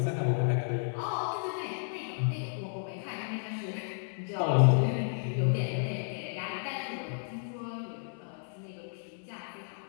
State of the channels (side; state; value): right; silent; 56 dB below the other